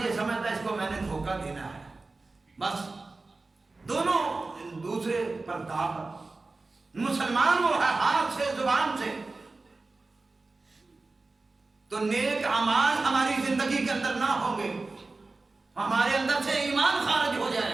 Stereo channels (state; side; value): quieter; left; 3.5 dB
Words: یہ سمجھتا ہے اس کو میں نے دھوکہ دینا ہے. بس دونوں دوسرے پر داغ. مسلمان وہ ہے ہاتھ سے زبان سے. تو نیک اعمال ہماری زندگی کے اندر نہ ہوں گے، ہمارے اندر سے ایمان خارج ہو